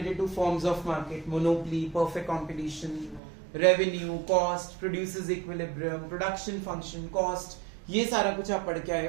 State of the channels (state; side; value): drops out; left; at 3.2 s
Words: to forms of market, monopoly, perfect competition, revenue, cost, produces equilibrium, production function, cost. ये सारा कुछ आप पढ़ के आए